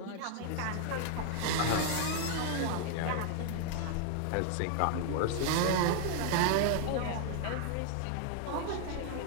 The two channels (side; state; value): both; different; correlation 0.00